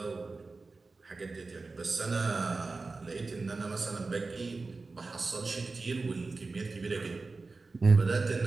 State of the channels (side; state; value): left; quieter; 3.8 dB